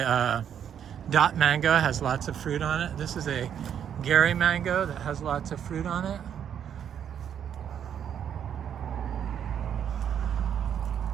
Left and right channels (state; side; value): quieter; left; 8.9 dB